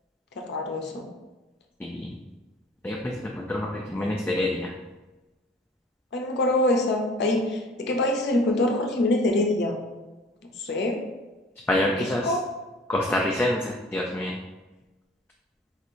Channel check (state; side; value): normal; both; correlation 0.48